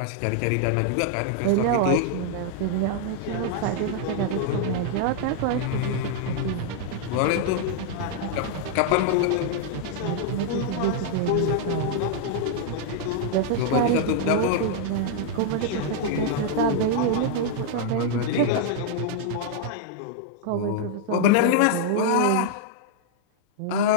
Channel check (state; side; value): different; both; correlation -0.01